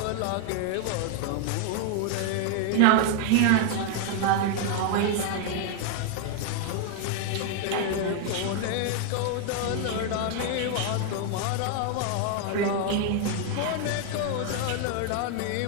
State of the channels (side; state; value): both; different; correlation 0.00